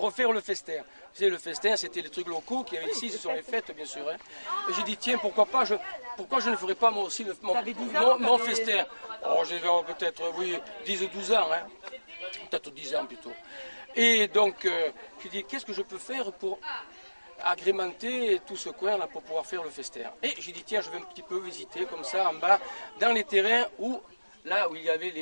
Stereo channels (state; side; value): inverted; both; correlation -1.00